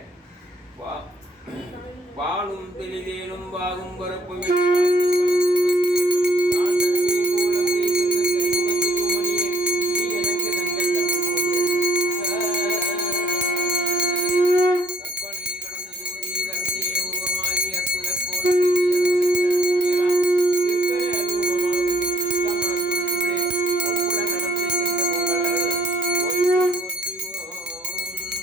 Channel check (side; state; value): both; normal; correlation 0.62